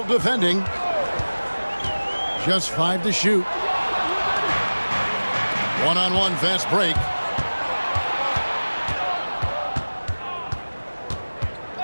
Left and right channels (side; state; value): both; inverted; correlation -1.00